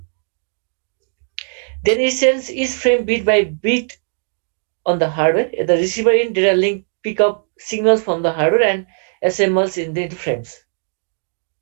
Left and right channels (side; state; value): left; silent; 62 dB below the other